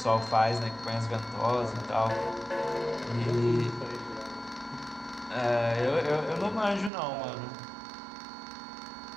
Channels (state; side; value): drops out; left; at 6.9 s